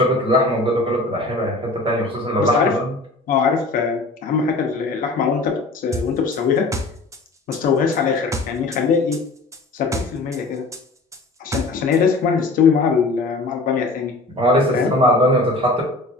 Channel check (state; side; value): quieter; right; 3.0 dB